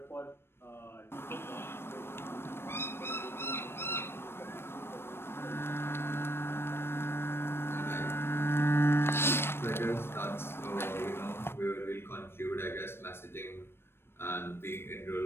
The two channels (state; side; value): late; right; 0.12 ms